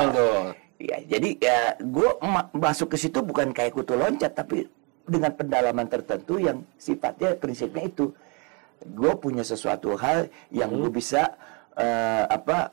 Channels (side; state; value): left; quieter; 32.6 dB